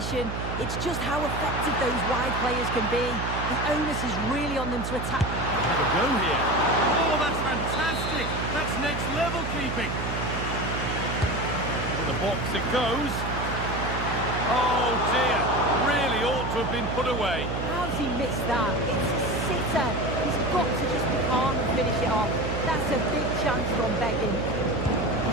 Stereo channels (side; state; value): right; noise; hum, 4 dB below the sound